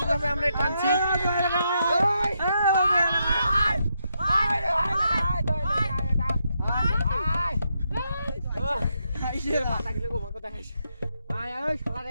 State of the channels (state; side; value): inverted; both; correlation -0.81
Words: আমরা টানছি। পাতা গেলে গোমা কথা খাইছে। আয় আয় শালা রে